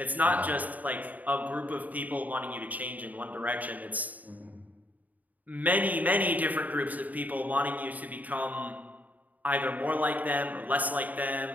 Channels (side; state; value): left; late; 0.077 ms